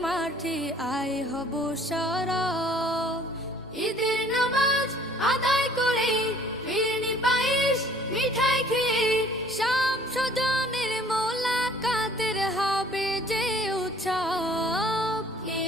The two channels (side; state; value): both; normal; correlation 0.56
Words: মাঠে আয় হব সরব। ঈদের নামাজ আদায় করে ফিরনি পায়েস মিঠাই খেয়ে সব স্বজনের মোলাকাতের হবে যে উৎসব।